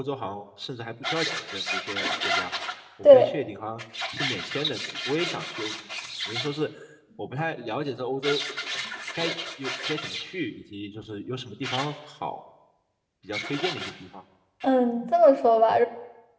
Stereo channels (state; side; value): identical; both; correlation 1.00